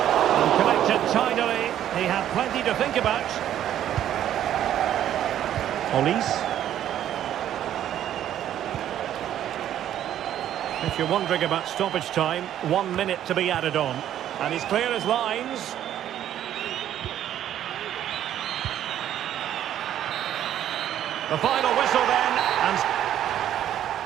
connected tidily. He had plenty to think about. Olise. If you're wondering about stoppage time, 1 minute to be added on. And he's clear as lines. The final whistle then, and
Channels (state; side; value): quieter; left; 11.2 dB